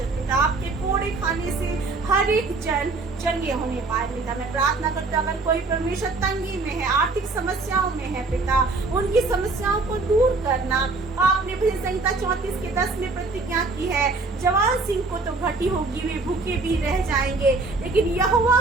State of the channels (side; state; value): left; quieter; 3.6 dB